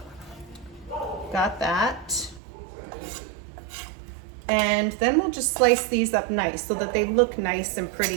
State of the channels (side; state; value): left; drops out; at 2.4 s